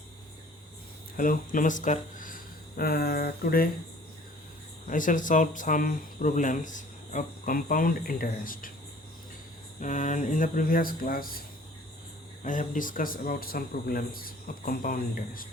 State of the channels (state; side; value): normal; both; correlation 0.52